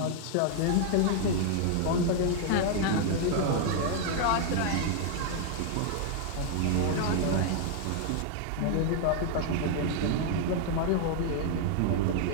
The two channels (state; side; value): different; both; correlation -0.01